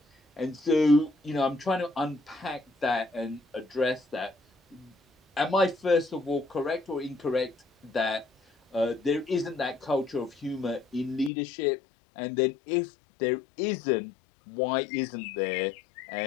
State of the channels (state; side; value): drops out; right; at 11.3 s